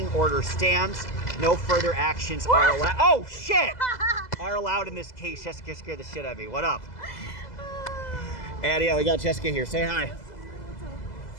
order stands. No further actions are allowed. Oh, shit! Are allowed in this case. Jessica scared the shit out of me. What up? And yeah, we got Jessica here. Say hi.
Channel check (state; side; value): late; right; 2.0 ms